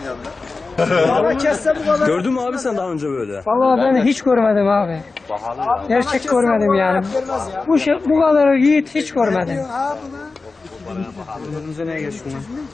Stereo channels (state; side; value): quieter; right; 3.9 dB